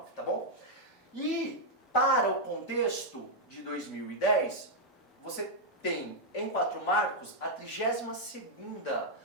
tá bom? E para o contexto de 2010, você tem em Quatro Marcos a 32ª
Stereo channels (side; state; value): both; normal; correlation -0.03